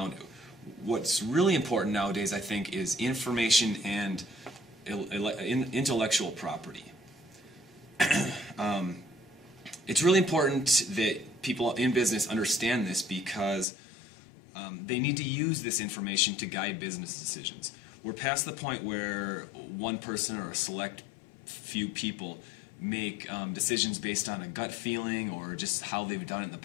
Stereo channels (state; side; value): drops out; right; at 13.7 s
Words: it. What's really important nowadays, I think, is information and intellectual property. It's really important that people in business understand this because they need to use this information to guide business decisions. We're past the point where one person or a select few people make decisions based on a gut feeling or just how they've done it in the